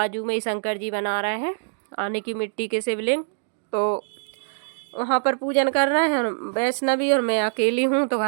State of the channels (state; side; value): silent; left; digital silence